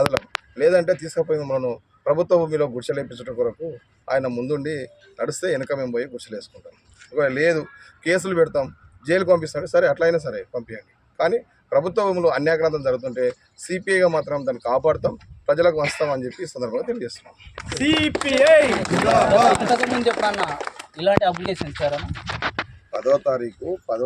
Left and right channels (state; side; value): identical; both; correlation 1.00